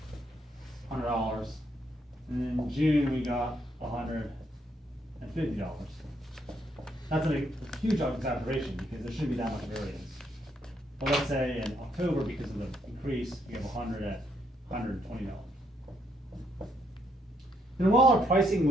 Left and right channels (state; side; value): normal; both; correlation 0.74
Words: $100. And in June, we got $150. That's a huge exaggeration because there shouldn't be that much variance. But let's say in October, because of the increase, we have 100 at $120. And while our pricing